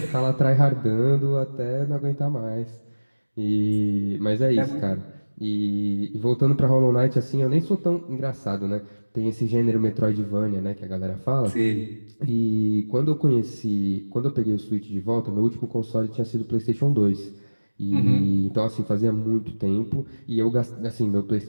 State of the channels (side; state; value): both; inverted; correlation -1.00